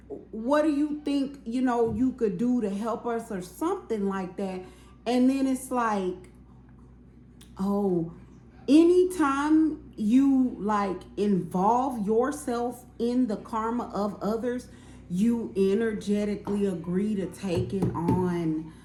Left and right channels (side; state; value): both; identical; correlation 1.00